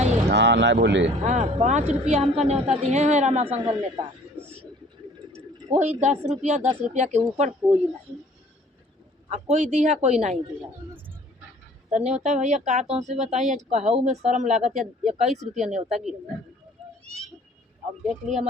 हाँ नहीं भूली। हाँ 5 रुपया हमका न्योता दिए हैं रामा संघल नेता। कोई 10 रुपया के ऊपर कोई नहीं, कोई दिया कोई नहीं दिया। तो न्योता भैया का तो से बताइए कहू में शर्म लागत या 21 रुपया न्योता गिर। अब देख लिया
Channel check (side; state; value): both; normal; correlation 0.53